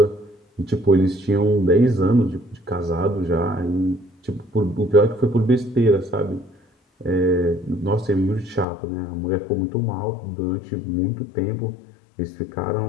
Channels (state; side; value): drops out; right; at 8.7 s